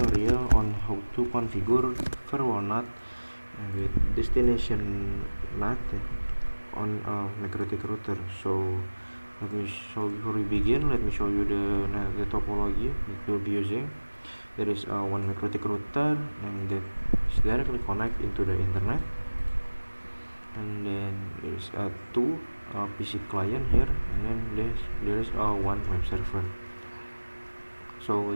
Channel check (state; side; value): inverted; both; correlation -1.00